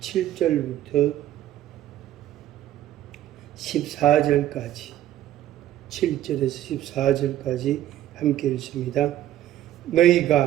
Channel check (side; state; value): left; quieter; 12.7 dB